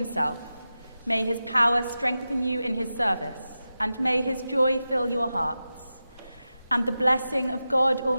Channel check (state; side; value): inverted; both; correlation -0.93